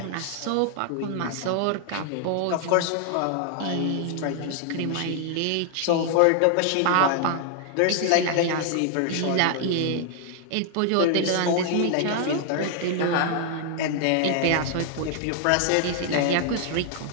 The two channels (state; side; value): different; both; correlation 0.00